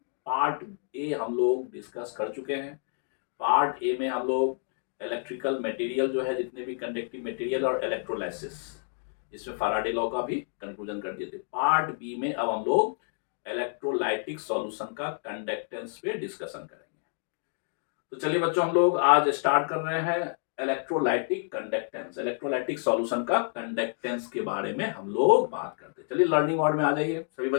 पार्ट ए हम लोग डिस्कस कर चुके हैं। पार्ट ए में हम लोग इलेक्ट्रिकल मटेरियल जो है, जितने भी कंडक्टिव मटेरियल और इलेक्ट्रोलाइसिस, इसमें फैराडे लॉ का भी कंक्लूजन कर दिए थे। पार्ट बी में अब हम लोग इलेक्ट्रोलाइटिक सॉल्यूशन का कंडक्टेंस पे डिस्कशन करेंगे। तो चलिए बच्चों, हम लोग आज स्टार्ट कर रहे हैं इलेक्ट्रोलाइटिक कंडक्टेंस। इलेक्ट्रोलाइटिक सॉल्यूशन का कंडक्टेंस के बारे में हम लोग बात करते हैं। चलिए लर्निंग मोड में आ जाइए सभी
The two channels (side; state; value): right; silent; 55 dB below the other